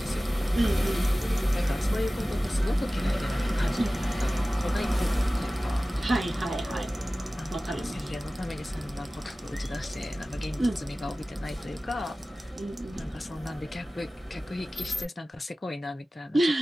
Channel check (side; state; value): both; normal; correlation 0.97